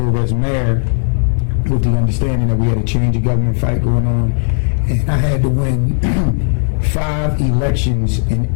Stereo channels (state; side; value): silent; right; digital silence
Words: as mayor with the understanding that we had a change of government fight going on. And I had to win 5 elections in